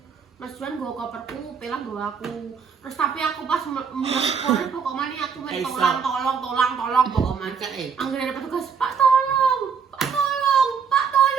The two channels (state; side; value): quieter; left; 6.3 dB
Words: Mas Juan nggo koperku, pelah nggo aku. Terus tapi aku pas mulai pokoknya aku main tolong pokoknya. Anggere ada petugas, Pak tolong.